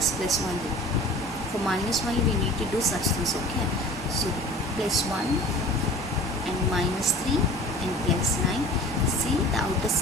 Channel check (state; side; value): normal; both; correlation 0.42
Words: plus 1. For minus 1 we need to do such things, okay? So plus 1 and minus 3 and plus 9. See, the outer